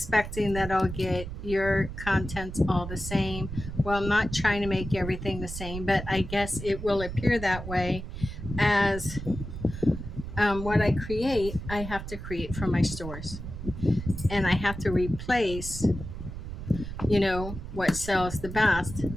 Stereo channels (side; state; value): right; noise; rumble, 8 dB below the sound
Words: that I'll get your contents all the same. Well, I'm not trying to make everything the same, but I guess it will appear that way as what I create, I have to create for my stores. And I have to replace, what sells the best.